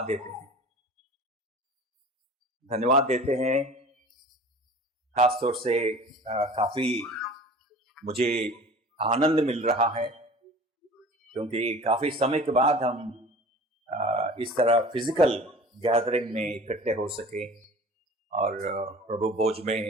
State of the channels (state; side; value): normal; both; correlation 0.42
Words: देते हैं। धन्यवाद देते हैं खासतौर से काफी मुझे आनंद मिल रहा है, क्योंकि काफी समय के बाद हम इस तरह फिजिकल गैदरिंग में इकट्ठे हो सके और प्रभु भोज में